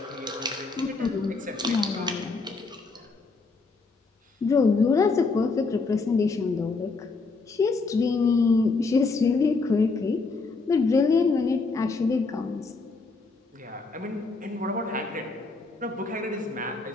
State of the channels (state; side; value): quieter; right; 4.0 dB